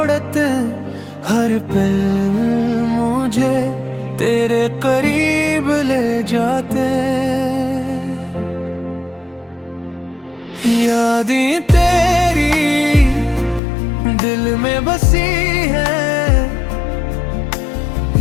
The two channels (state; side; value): drops out; right; at 13.6 s